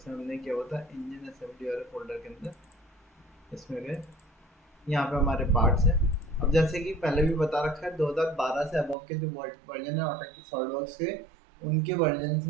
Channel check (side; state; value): left; drops out; at 9.0 s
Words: हमने किया हुआ था इंजन असेंबली वाले फोल्डर के अंदर, इसमें गए, यहाँ पे हमारे पार्ट्स हैं। अब जैसे कि पहले भी बता रखा है, 2012 से अबव के जो वर्जन है ऑटोकैड सॉलिडवर्क्स के, उनके वर्जन